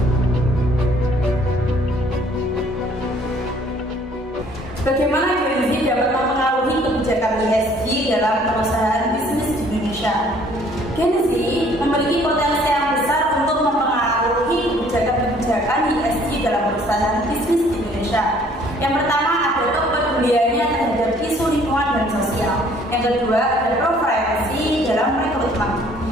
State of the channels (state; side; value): normal; both; correlation 0.59